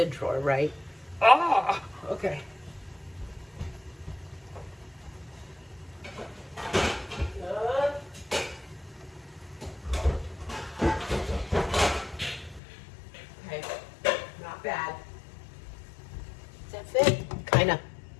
drawer, right? Ah, okay. Bad. Does that fit? Kinda.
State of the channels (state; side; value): drops out; right; at 12.6 s